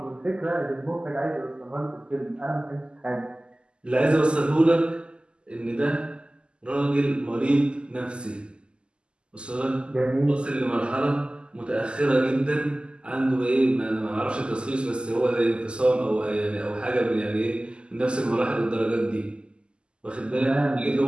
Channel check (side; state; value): left; late; 0.050 ms